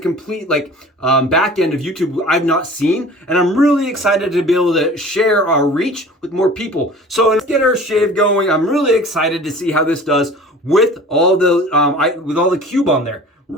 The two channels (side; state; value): both; normal; correlation 0.43